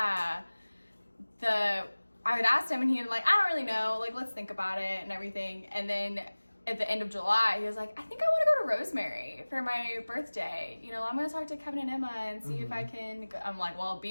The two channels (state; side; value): inverted; both; correlation -1.00